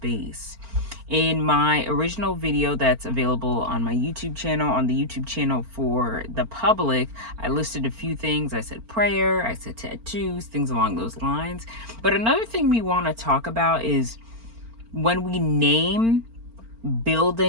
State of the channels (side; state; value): left; late; 4.4 ms